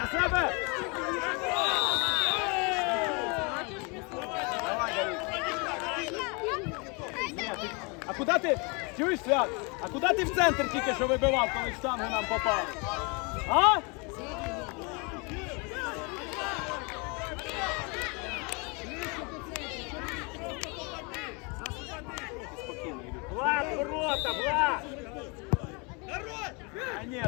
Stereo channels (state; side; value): quieter; right; 31.2 dB